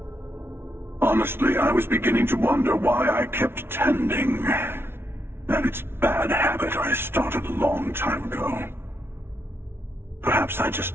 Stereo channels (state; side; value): late; left; 0.12 ms